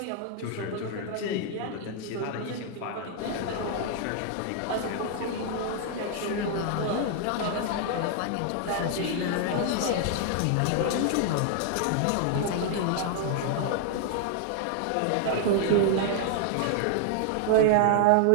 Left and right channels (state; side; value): different; both; correlation 0.00